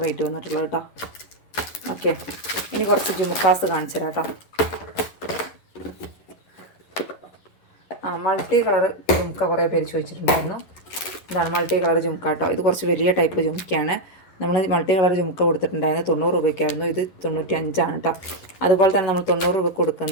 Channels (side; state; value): right; late; 11 ms